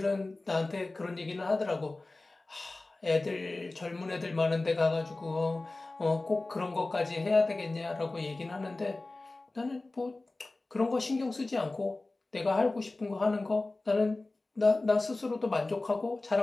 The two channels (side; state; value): right; quieter; 3.1 dB